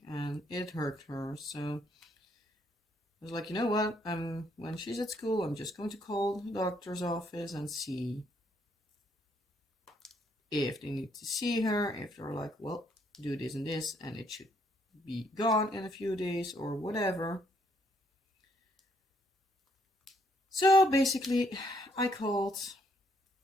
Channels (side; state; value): both; normal; correlation 0.71